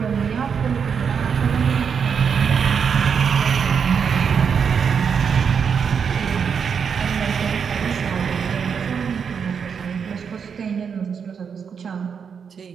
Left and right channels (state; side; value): quieter; left; 6.7 dB